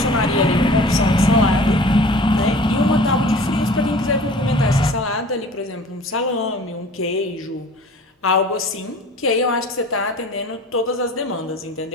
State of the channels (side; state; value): both; normal; correlation 0.45